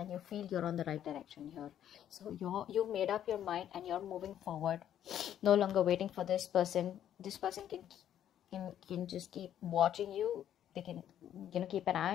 you feel you're on the right direction here. So you've made up your mind and you're moving forward, no longer waiting for this person. This person can just keep watching you. They can keep an eye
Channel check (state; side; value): quieter; right; 10.5 dB